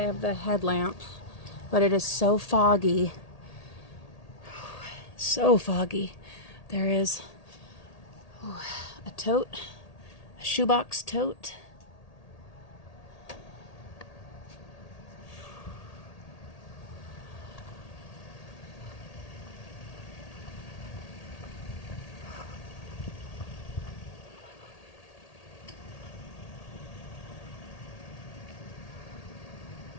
the headlamp, but it is so foggy. So foggy. There is a tote, a shoebox tote.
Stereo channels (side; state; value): right; late; 1.8 ms